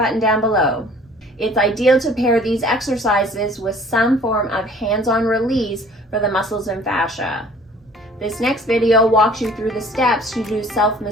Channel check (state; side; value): normal; both; correlation 0.52